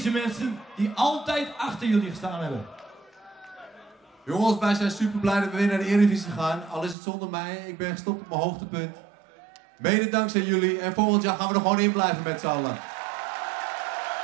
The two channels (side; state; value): left; drops out; at 7.0 s